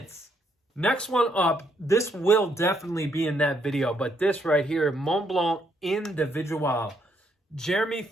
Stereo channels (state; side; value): normal; both; correlation 0.73